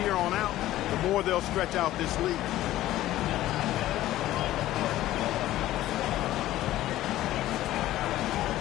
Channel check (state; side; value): quieter; right; 14.8 dB